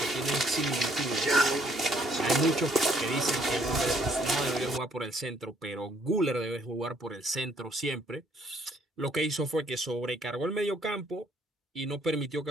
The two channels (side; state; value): both; normal; correlation 0.66